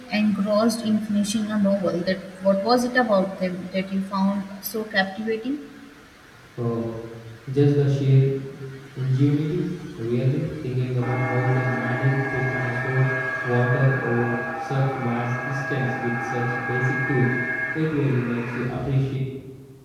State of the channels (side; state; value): both; identical; correlation 1.00